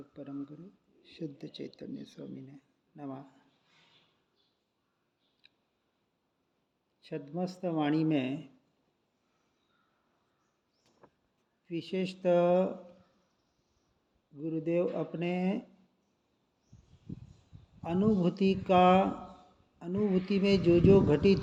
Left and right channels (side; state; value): both; identical; correlation 1.00